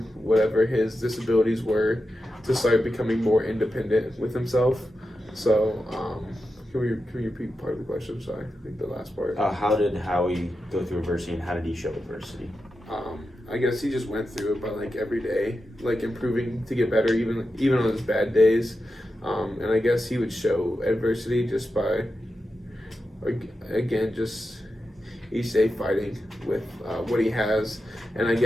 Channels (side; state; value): both; normal; correlation 0.90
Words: whatever his disabilities were, to start becoming more independent with himself. So, can we repeat part of the question? Sorry, I think the last part. How did Howie go through adversity and how did he show adversity? I guess he just went through it by like every day, like improving to get better, even on his bad days. And I guess he would show adversity just by, again, just each day fighting with what he has. And I